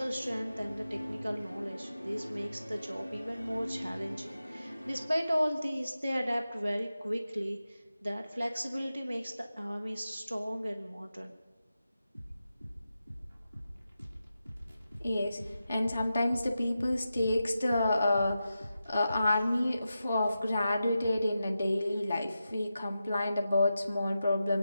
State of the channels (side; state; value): both; inverted; correlation -0.91